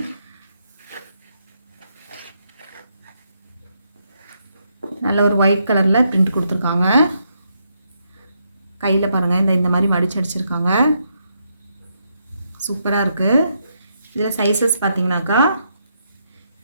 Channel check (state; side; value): inverted; both; correlation -0.78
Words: நல்ல ஒரு ஒயிட் கலரில் பிரிண்ட் கொடுத்துருக்காங்க. கையில் பாருங்கள், இந்த மாதிரி மடிச்சு அடிச்சிருக்காங்க. சூப்பராக இருக்குது. இதில் சைஸஸ் பார்த்தீங்கன்னாக்கா